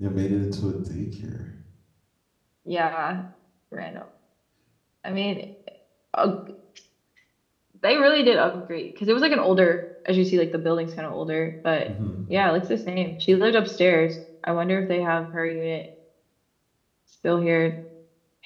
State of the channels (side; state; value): both; identical; correlation 1.00